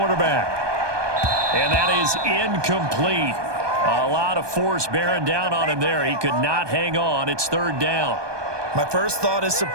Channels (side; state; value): left; late; 1.2 ms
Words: And that is incomplete. A lot of force bearing down on him there. He could not hang on. It's 3rd down. My first thought is